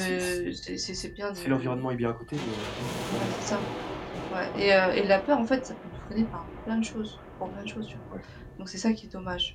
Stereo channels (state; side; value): identical; both; correlation 1.00